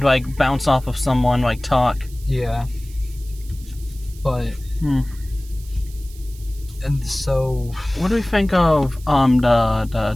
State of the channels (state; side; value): noise; right; hiss, 22 dB below the sound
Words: like bounce off of someone, like talk. Yeah. But. And so. What do we think of